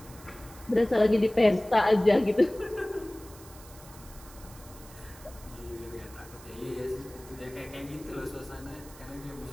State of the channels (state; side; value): noise; right; hiss, 20 dB below the sound